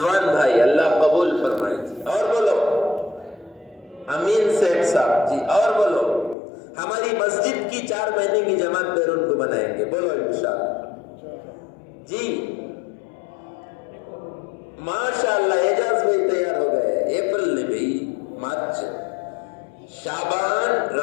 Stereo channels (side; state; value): right; drops out; at 6.4 s